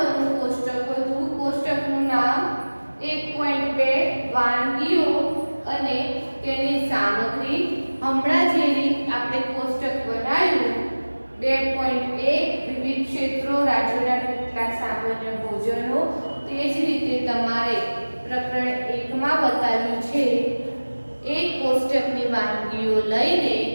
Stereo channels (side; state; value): both; inverted; correlation -1.00